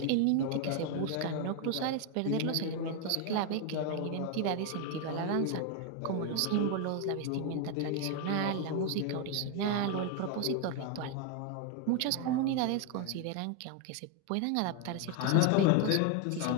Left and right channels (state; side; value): different; both; correlation 0.01